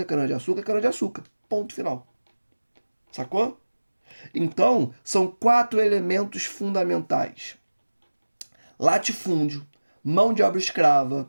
cana-de-açúcar, cana-de-açúcar. Ponto final. Sacou? Então, são 4 elementos fundamentais. Latifúndio, mão de obra escrava,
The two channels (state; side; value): inverted; both; correlation -1.00